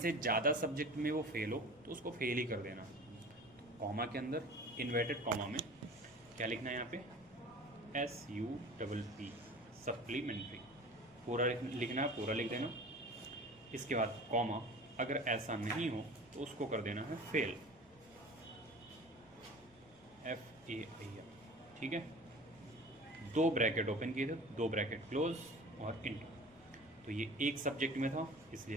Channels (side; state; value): right; noise; rumble, 29 dB below the sound